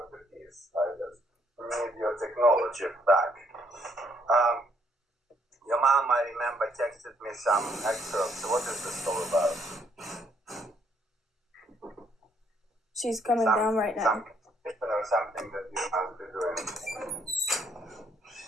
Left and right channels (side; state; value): both; normal; correlation 0.69